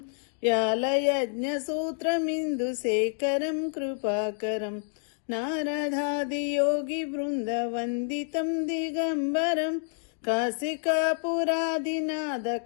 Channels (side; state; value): right; silent; digital silence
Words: వ్యాలయజ్ఞ సూత్రమిందు శేఖరం కృపాకరం నారదాది యోగి బృంద వందితం దిగంబరం కాశికాపురాదినాద